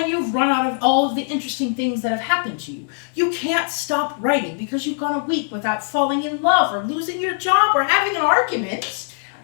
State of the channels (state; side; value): silent; right; 61 dB below the other